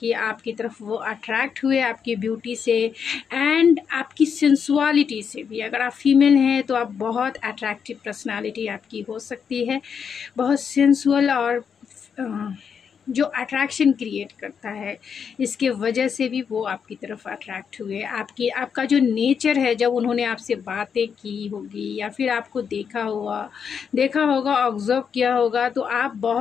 आपकी तरफ वो अट्रैक्ट हुए, आपकी ब्यूटी से एंड आपकी सेंसुअलिटी से भी। अगर आप फीमेल हैं तो आप बहुत अट्रैक्टिव पर्सनालिटी आपकी हो सकती है, बहुत सेंसुअल और जो अट्रैक्शन क्रिएट करता है, इसके वजह से भी वो आपकी तरफ अट्रैक्ट हुए। आपका जो नेचर है, जब उन्होंने आपसे बातें की होगी या फिर आपको देखा होगा, ऑब्जर्व किया होगा, तो आप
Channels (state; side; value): quieter; right; 6.9 dB